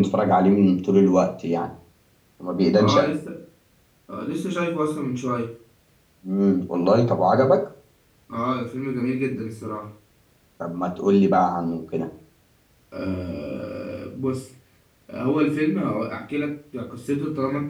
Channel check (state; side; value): identical; both; correlation 1.00